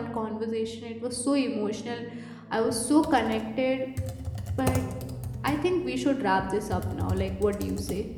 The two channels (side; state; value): both; identical; correlation 1.00